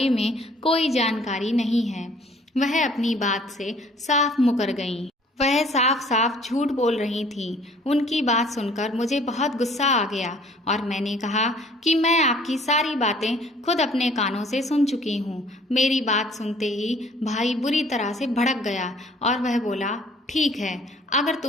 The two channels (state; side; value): normal; both; correlation 0.56